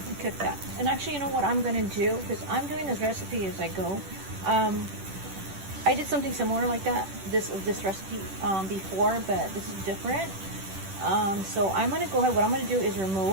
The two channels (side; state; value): left; late; 10 ms